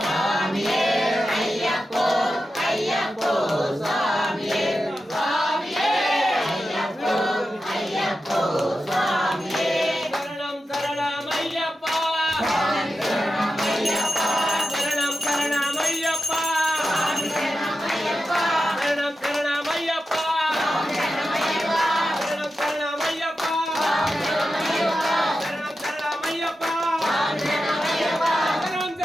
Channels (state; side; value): normal; both; correlation 0.91